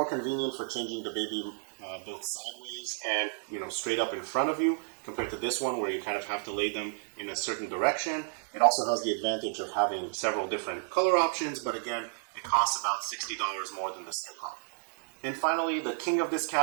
convenient for changing the baby both sideways and straight up in front of you, compared to this one where you kind of have to lay them in a certain direction. It also has the advantage of having several different color options, but again, it costs about $60 more than the Skip Hop. And finally, the king of this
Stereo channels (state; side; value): silent; left; 57 dB below the other